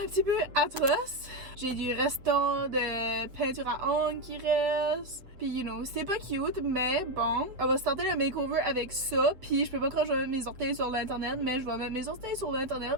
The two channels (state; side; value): late; left; 7.8 ms